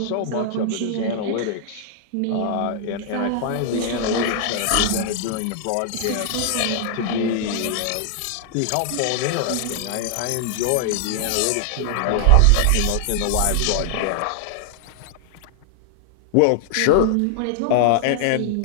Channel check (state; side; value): different; both; correlation -0.01